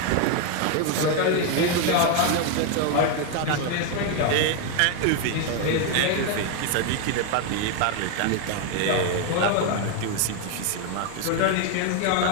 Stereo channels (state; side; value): different; both; correlation 0.01